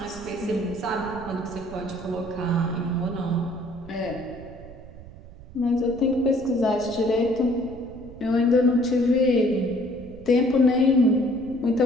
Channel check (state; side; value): noise; right; rumble, 17 dB below the sound